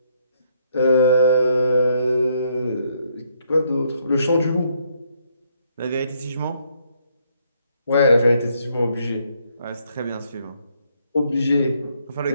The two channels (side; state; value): both; inverted; correlation -0.72